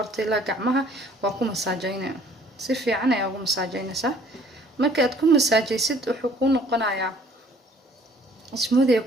ila gacmaha waa ku masaajeynaa si fiican ayaa ugu masaajeynaysaa marka aad ku masaajeysid wuxuu ku noqonayaa smoothie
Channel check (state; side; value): normal; both; correlation 0.57